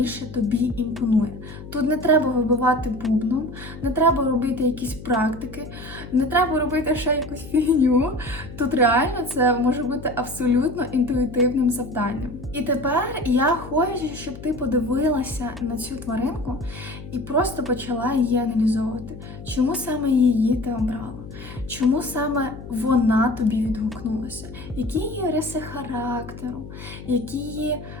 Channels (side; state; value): left; noise; hum, 13 dB below the sound